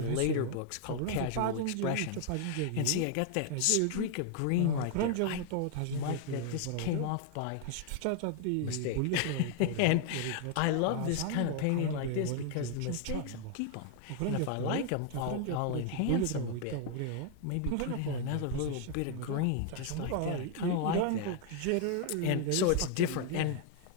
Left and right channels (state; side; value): different; both; correlation 0.00